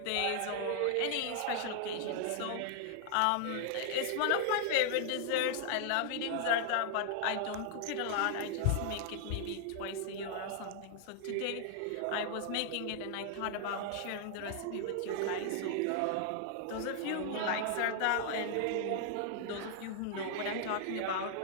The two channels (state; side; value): different; both; correlation 0.00